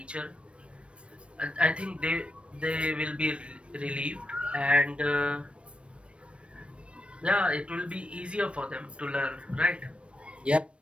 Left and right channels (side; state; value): left; late; 0.060 ms